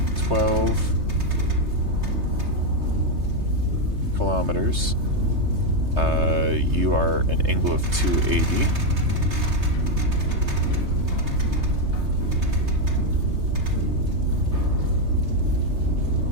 kilometers. You are an angle of 280.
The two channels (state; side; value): late; left; 3.3 ms